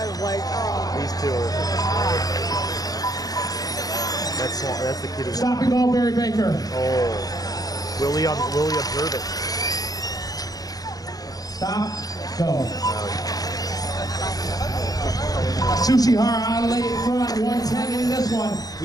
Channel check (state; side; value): late; right; 0.18 ms